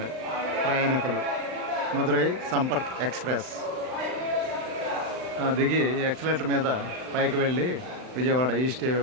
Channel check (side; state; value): left; late; 39 ms